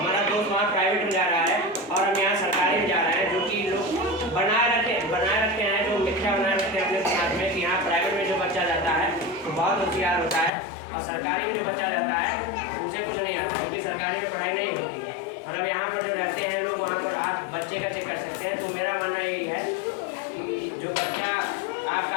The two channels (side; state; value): right; drops out; at 10.5 s